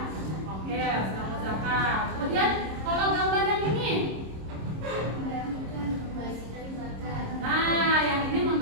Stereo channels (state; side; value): late; left; 26 ms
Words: yang sedang berzakat. Kemudian kalau gambar yang ini, nah yang ini